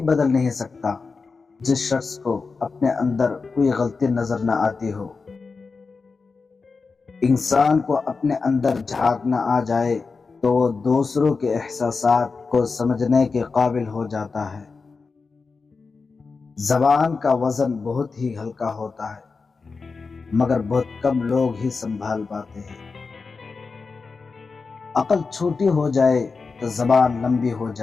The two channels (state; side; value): quieter; right; 4.5 dB